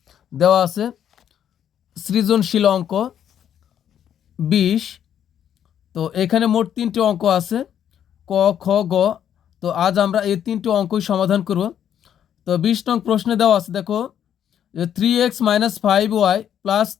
দেওয়া আছে সৃজনশীল অঙ্ক 20। তো এখানে মোট 3টি অঙ্ক আছে, ক, খ, গ। তো আজ আমরা এই 3টি অঙ্কই সমাধান করব। তো 20 নং প্রশ্নে দেওয়া আছে, দেখো, 3x - 5y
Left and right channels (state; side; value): quieter; right; 9.6 dB